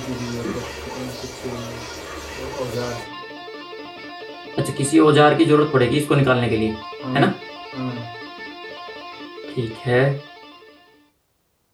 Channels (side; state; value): both; identical; correlation 1.00